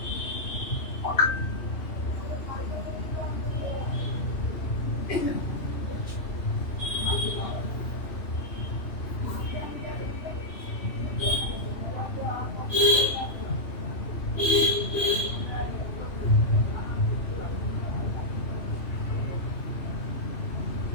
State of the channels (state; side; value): late; right; 3.0 ms